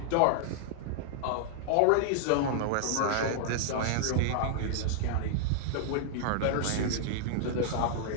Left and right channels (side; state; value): both; different; correlation -0.01